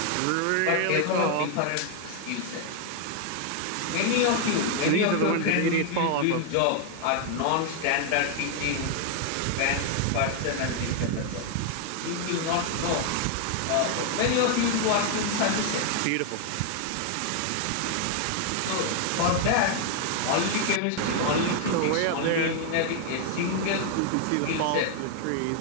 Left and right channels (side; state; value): both; different; correlation 0.00